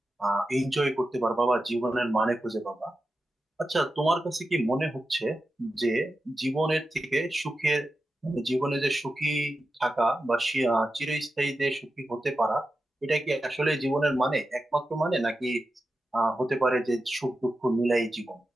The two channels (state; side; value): normal; both; correlation 0.91